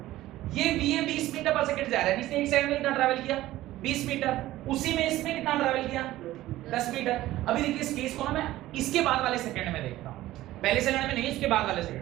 ये बी है 20 मीटर पर सेकंड जा रहा है, इसने एक सेकंड में कितना ट्रैवल किया 20 मीटर, उसी में इसने कितना ट्रैवल किया 10 मीटर। अभी देखिए इस केस को ना मैं इसके बाद वाले सेकंड में देखता हूं, पहले सेकंड में नहीं, इसके बाद वाले सेकंड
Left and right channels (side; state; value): left; quieter; 15.7 dB